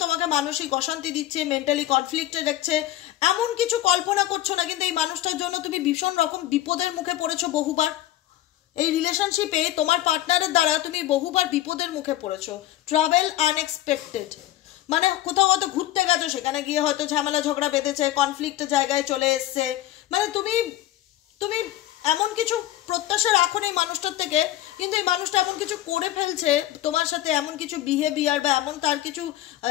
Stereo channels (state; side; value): quieter; right; 14.1 dB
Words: তোমাকে মানসিক অশান্তি দিচ্ছে, মেন্টালি কনফ্লিক্টে দেখছে। এমন কিছু কল্পনা করছো না, কিন্তু এই মানুষটার জন্য তুমি ভীষণ রকম বিপদের মুখে পড়েছো বহুবার। এই রিলেশনশিপে তোমার পার্টনারের দ্বারা তুমি বহুবার বিপদের মুখে পড়েছো। ট্রাভেল আনএক্সপেক্টেড, মানে কোথাও হয়তো ঘুরতে গেছো, সেখানে গিয়ে হয়তো ঝামেলা ঝগড়া বেঁধেছে, কনফ্লিক্টের জায়গায় চলে এসছে। মানে তুমি এমন কিছু প্রত্যাশা রাখো না এই মানুষটার থেকে, কিন্তু এই মানুষটা এমন কিছু করে ফেলছে তোমার সাথে, এমন কিছু বিহেভিয়ার বা এমন তার কিছু